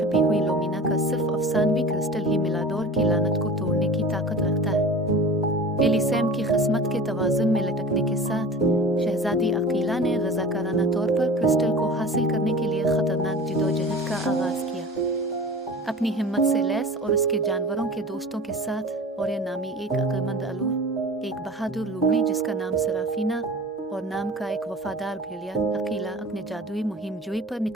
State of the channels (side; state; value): both; normal; correlation 0.38